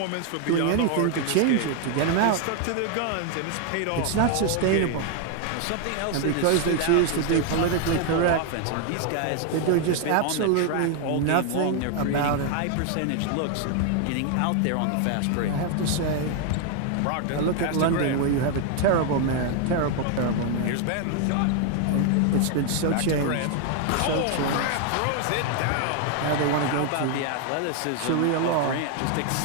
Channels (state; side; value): different; both; correlation 0.01